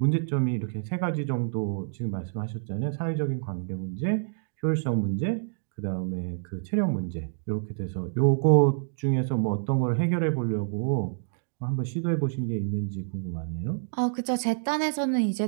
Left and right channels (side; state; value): left; silent; digital silence